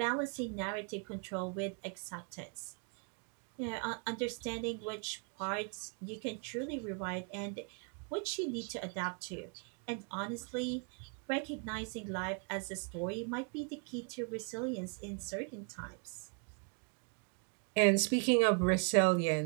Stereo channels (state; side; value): quieter; left; 38.9 dB